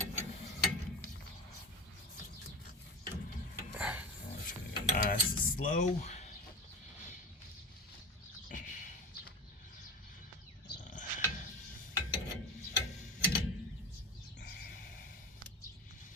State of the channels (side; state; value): both; normal; correlation 0.27